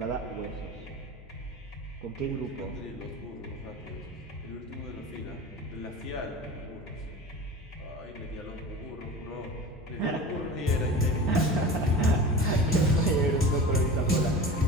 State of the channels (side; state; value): both; normal; correlation 0.33